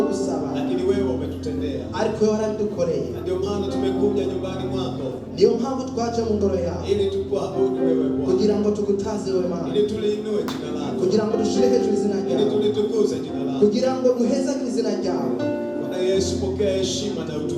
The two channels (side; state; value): both; identical; correlation 1.00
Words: gusaba, lakini wewe umetutendea. Ariko wewe warabidukoreye. Ndio maana tumekuja nyumbani mwako. Niyo mpamvu twaje mu ngoro yawe. Ili tukuabudu wewe Bwana. Kugira ngo tugutaze wewe Mana. Ili tuliinue jina lako. Kugira ngo dushire hejuru izina ryawe. Ili tulitukuze jina lako. Kugira ngo duhezagire izina ryawe. Bwana Yesu, pokea heshima na